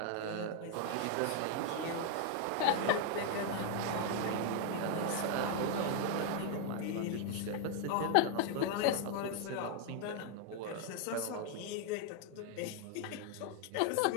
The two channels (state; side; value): different; both; correlation 0.00